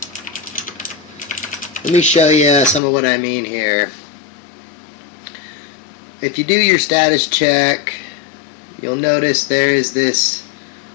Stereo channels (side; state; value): right; drops out; at 2.8 s